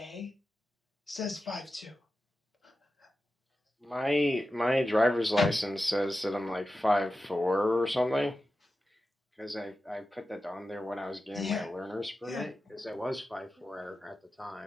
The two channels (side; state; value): both; normal; correlation 0.92